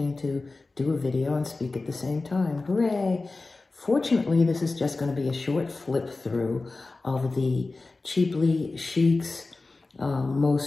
to do a video and speak at the same time. Hooray! Fortunately, this is just going to be a short flip through of the Cheaply Chic's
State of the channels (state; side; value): quieter; right; 3.5 dB